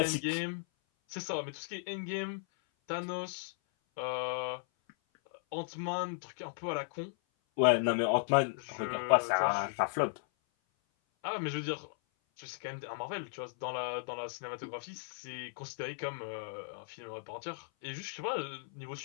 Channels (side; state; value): right; silent; 54 dB below the other